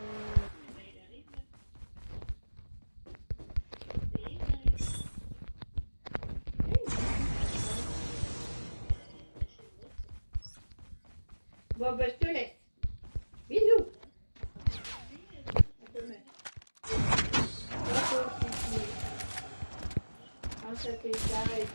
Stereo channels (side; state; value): both; inverted; correlation -1.00